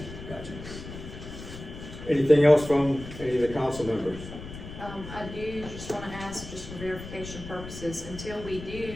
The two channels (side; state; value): left; noise; rumble, 12 dB below the sound